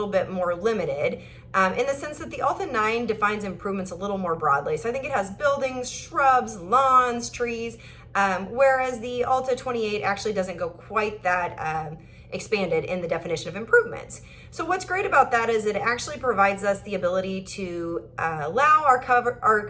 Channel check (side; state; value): both; identical; correlation 1.00